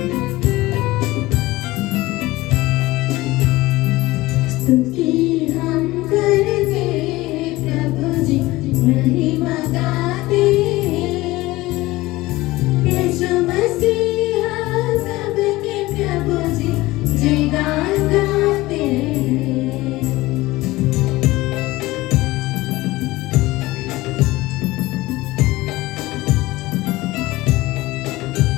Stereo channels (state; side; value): quieter; right; 19.1 dB